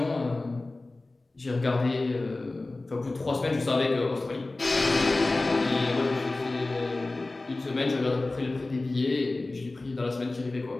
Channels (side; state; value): right; quieter; 3.1 dB